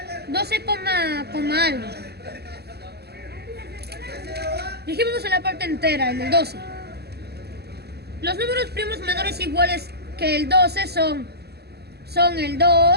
12, algo. Dijimos en la parte entera, en el 12. Los números primos menores iguales que el 12 son el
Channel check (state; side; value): late; left; 0.47 ms